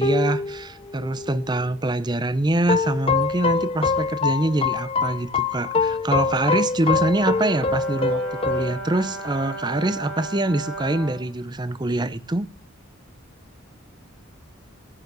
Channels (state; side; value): normal; both; correlation 0.48